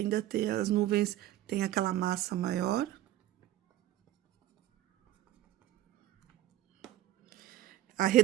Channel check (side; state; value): left; quieter; 13.9 dB